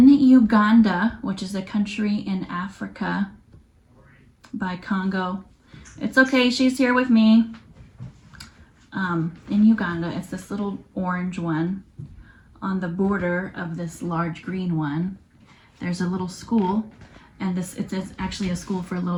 Uganda, which is a country in Africa by Congo. It's okay, she's here with me. In Uganda, it's this little orange one on the border of this large green one. There's a little school, and it's actually a school for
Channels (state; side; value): identical; both; correlation 1.00